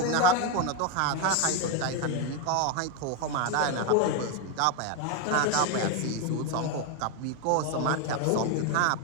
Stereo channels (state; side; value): different; both; correlation 0.01